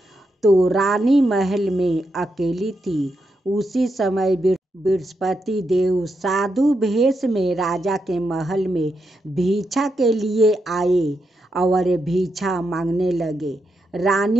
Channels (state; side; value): normal; both; correlation 0.84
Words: तो रानी महल में अकेली थी। उसी समय बृहस्पति देव साधु भेष में राजा के महल में भिक्षा के लिए आए और भिक्षा मांगने लगे।